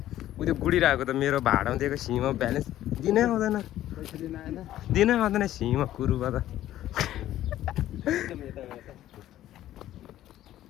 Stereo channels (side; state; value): right; quieter; 13.3 dB